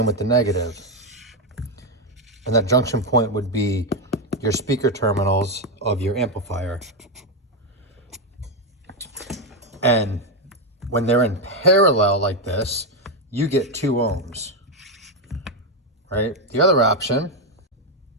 with the negative. And that junction point would be your speaker terminals of your amplifier. And when they're in parallel like this, you get 2 ohms, right? The other option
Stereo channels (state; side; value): normal; both; correlation 0.06